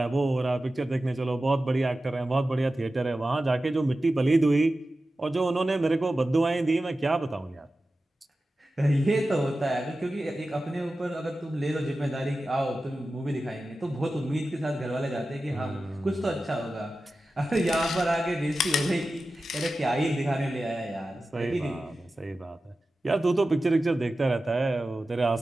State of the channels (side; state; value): both; normal; correlation 0.94